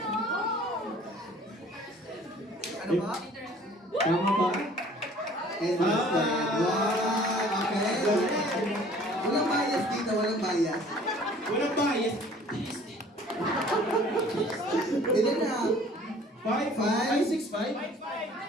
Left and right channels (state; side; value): normal; both; correlation 0.52